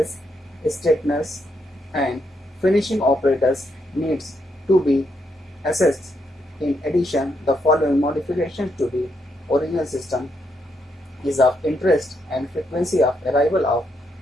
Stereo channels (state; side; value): normal; both; correlation 0.78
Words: straighteners and finishing operators needs to be assessed. In addition, the following modifications to the original system is of interest, and frequency of arrival of